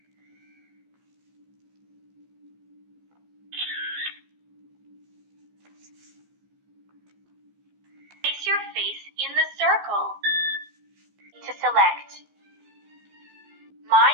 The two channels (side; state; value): left; late; 15 ms